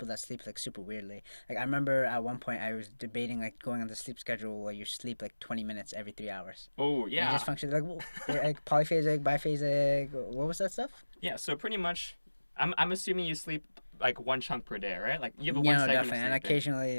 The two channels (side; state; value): both; inverted; correlation -1.00